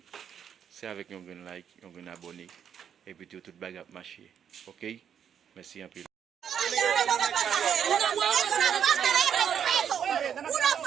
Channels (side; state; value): left; quieter; 8.4 dB